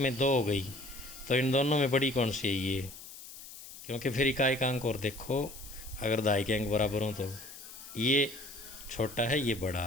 2 हो गई, तो इन दोनों में बड़ी कौन सी है ये, क्योंकि फिर इकाई का अंक और देखो, अगर दहाई के अंक बराबर हों तो ये छोटा है ये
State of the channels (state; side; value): noise; left; hiss, 15 dB below the sound